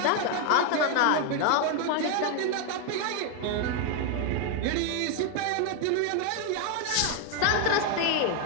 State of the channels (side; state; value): both; different; correlation 0.01